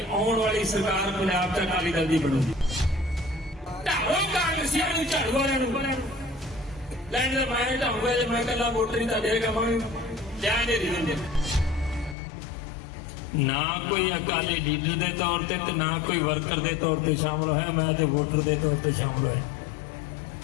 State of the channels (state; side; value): drops out; right; at 12.2 s